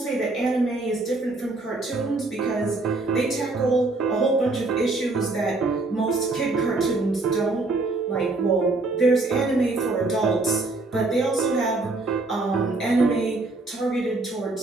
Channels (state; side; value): quieter; left; 3.2 dB